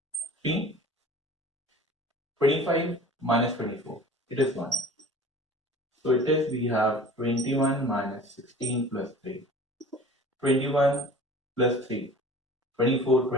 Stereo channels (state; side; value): normal; both; correlation 0.43